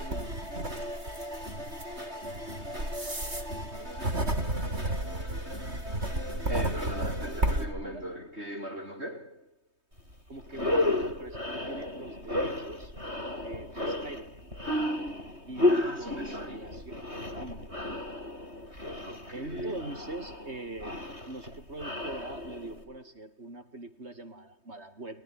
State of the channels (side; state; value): left; late; 3.2 ms